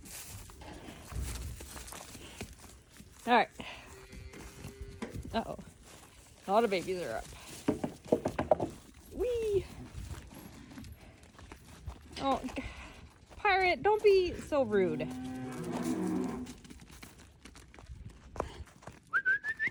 All right. Uh-oh. A lot of babies are up. Whee! Oh, Pirate, don't be so rude.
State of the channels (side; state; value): both; identical; correlation 1.00